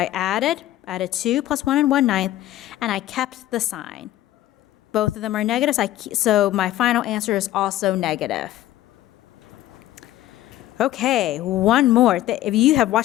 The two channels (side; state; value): right; quieter; 14.2 dB